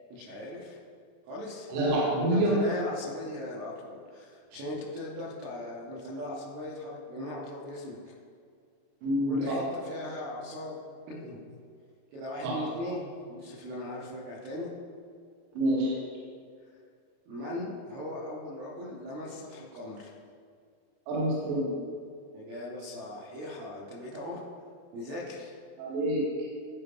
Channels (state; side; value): late; left; 29 ms